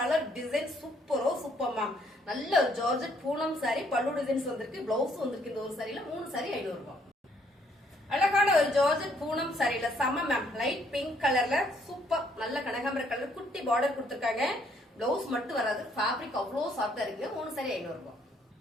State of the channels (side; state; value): both; normal; correlation 0.67